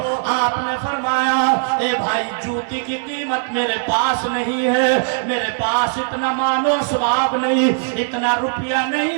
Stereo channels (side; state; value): left; silent; digital silence